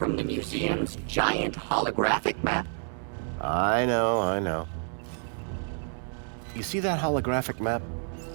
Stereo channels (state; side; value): silent; left; 58 dB below the other